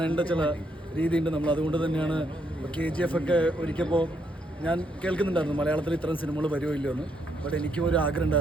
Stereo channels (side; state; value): both; normal; correlation 0.75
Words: ചില രീതിയുണ്ട്. നമ്മൾ അതുകൊണ്ട് തന്നെയാണ് KGF ഒക്കെ ഒരിക്കപ്പോൾ ഞാൻ കേൾക്കുന്നുണ്ടായിരുന്നു മലയാളത്തിൽ ഇത്തരം സിനിമകൾ വരുമോ ഇല്ലയോ എന്ന്. ബട്ട് എനിക്കും ഒരു ആഗ്രഹം